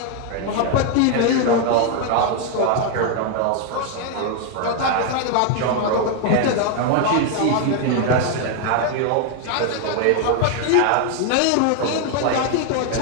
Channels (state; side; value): different; both; correlation 0.00